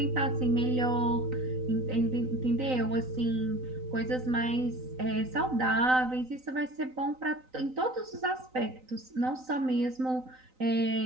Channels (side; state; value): left; late; 3.9 ms